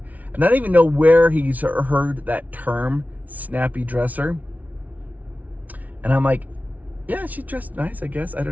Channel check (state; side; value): late; left; 0.073 ms